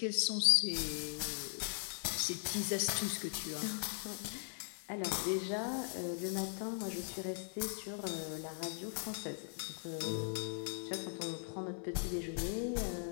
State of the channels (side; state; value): right; silent; 52 dB below the other